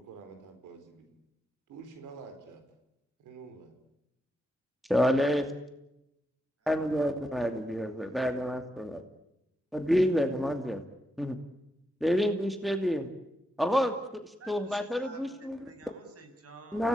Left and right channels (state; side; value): normal; both; correlation 0.84